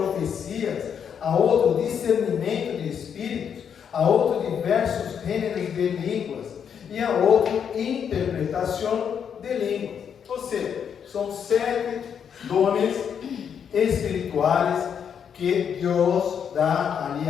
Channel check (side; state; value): right; quieter; 7.7 dB